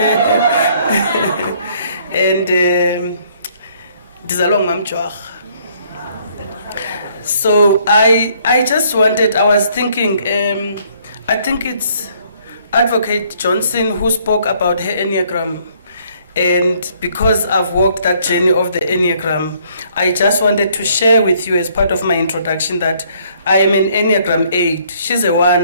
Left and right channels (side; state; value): both; inverted; correlation -0.64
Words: And ndizalwa ngumamjwarha. So I just wanted, I was thinking, I think it's Advocate Johnson who spoke about her Enneagram. And because I've walked that journey of the Enneagram, I just wanted to share with you as part of my introduction that I am an Enneagram 8. She's a